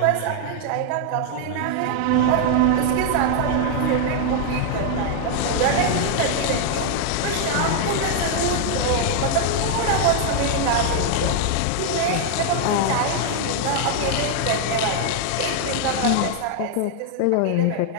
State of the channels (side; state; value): both; different; correlation 0.00